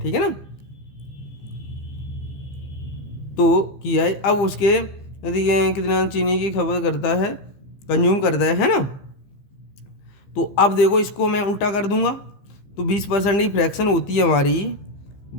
है ना। तो किया है। अब उसके यदि ये कितना चीनी की खपत करता है, कंज्यूम करता है ना। तो अब देखो इसको मैं उल्टा कर दूंगा, तो 20% की फ्रैक्शन होती है हमारी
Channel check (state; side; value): late; right; 15 ms